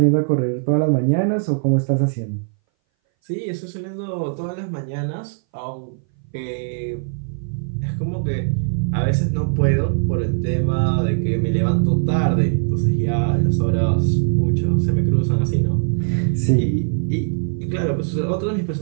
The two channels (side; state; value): left; silent; 61 dB below the other